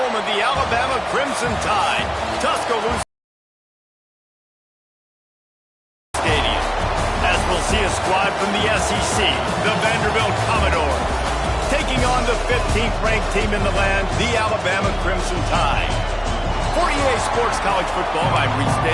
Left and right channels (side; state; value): both; identical; correlation 1.00